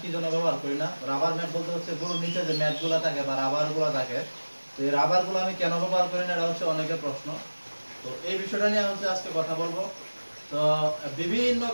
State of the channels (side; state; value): both; inverted; correlation -1.00